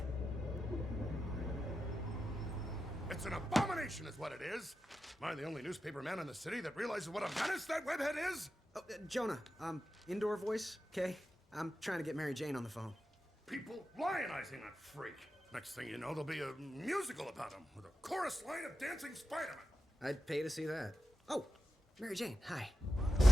It's an abomination is what it is. Am I the only newspaper man in the city that realizes what a menace that webhead is? Oh, Jonah, indoor voice, okay? I'm trying to get Mary Jane on the phone. People lionizing that freak. Next thing you know, there'll be a musical about him with a chorus line of dancing Spider-Man. I'd pay to see that. Oh, Mary Jane, hi.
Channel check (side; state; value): both; normal; correlation 0.90